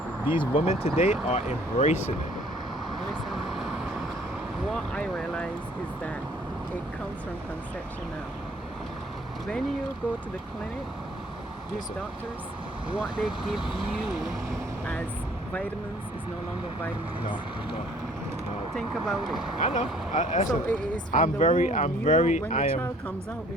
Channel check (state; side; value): normal; both; correlation 0.58